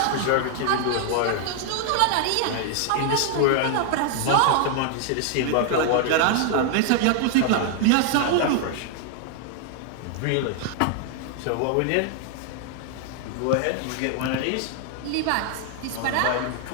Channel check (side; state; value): both; different; correlation 0.00